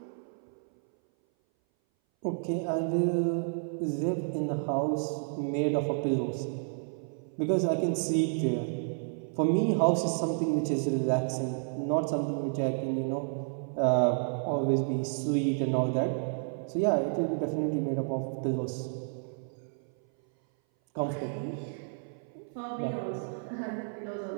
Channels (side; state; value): left; silent; 57 dB below the other